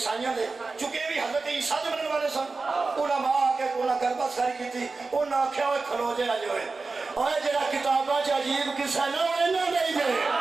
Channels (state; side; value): quieter; left; 3.9 dB